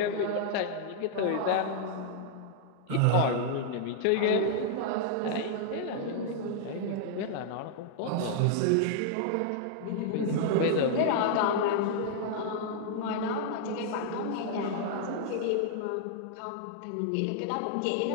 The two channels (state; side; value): different; both; correlation -0.01